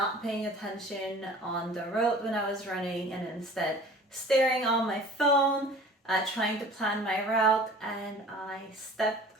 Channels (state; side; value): normal; both; correlation 0.45